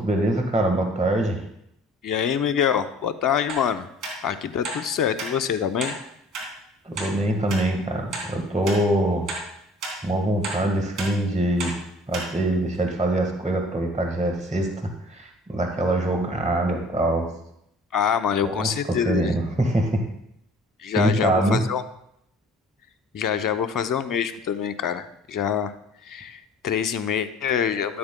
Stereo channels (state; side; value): normal; both; correlation 0.50